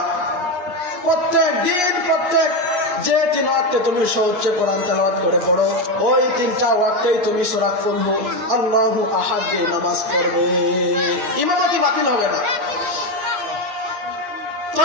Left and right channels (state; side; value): late; left; 8.4 ms